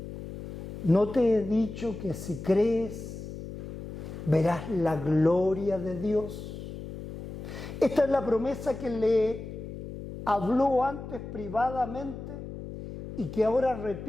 ¿No te he dicho que si crees, verás la gloria de Dios? Esta es la promesa que le habló antes privadamente y que ahora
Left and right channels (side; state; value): left; noise; hum, 10 dB below the sound